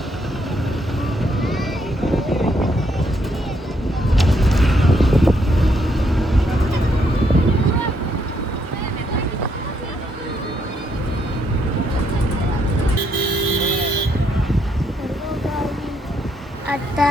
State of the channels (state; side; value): normal; both; correlation 0.74